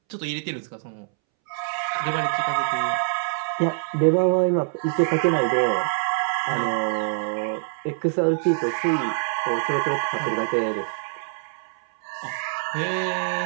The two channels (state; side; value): silent; left; 62 dB below the other